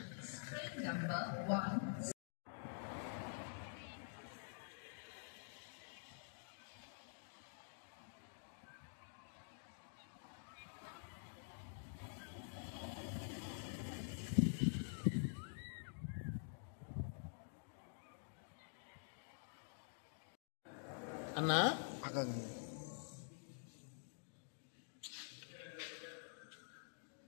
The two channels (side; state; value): right; silent; digital silence